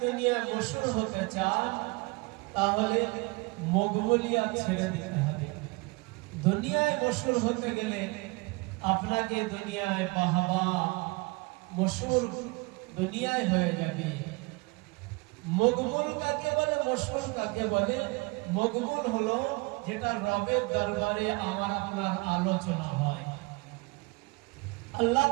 দুনিয়ায় মশহুর হতে চান তাহলে মকবুলিয়াত ছেড়ে দিতে হবে। দুনিয়ায় মশহুর হতে গেলে আপনাকে দুনিয়ায় বাহবা, মশহুর দুনিয়ায় হয়ে যাবে। মকবুল কাকে বলে, মশহুর কাকে বলে? মকবুল হলো যেটা রবের দরবারে আমার আপনার আলোচনা হয়। আল্লাহ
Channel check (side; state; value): left; quieter; 26.2 dB